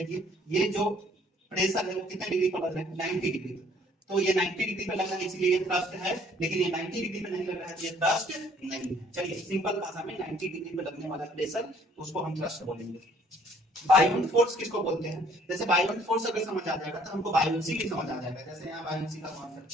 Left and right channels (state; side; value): normal; both; correlation 0.60